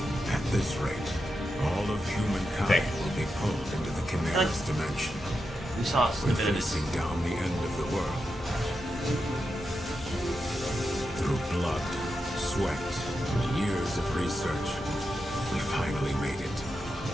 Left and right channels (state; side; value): normal; both; correlation 0.88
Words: At this rate, all of humankind will be pulled into the Chimera's dimension. We saw a We're snippet of this. facing down the end of the world. Through blood, sweat, and years of research, we finally made it.